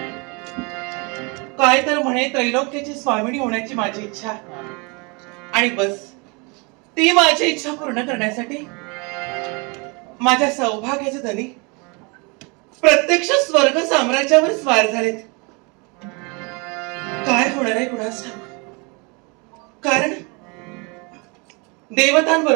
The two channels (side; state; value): left; quieter; 30.4 dB